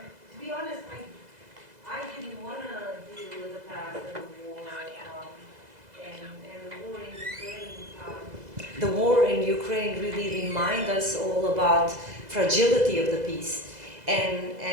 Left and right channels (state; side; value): late; left; 2.0 ms